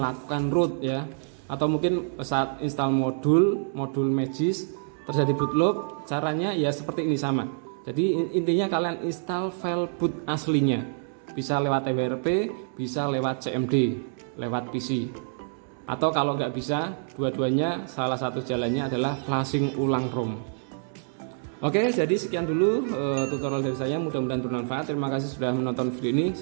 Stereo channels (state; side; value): silent; left; 60 dB below the other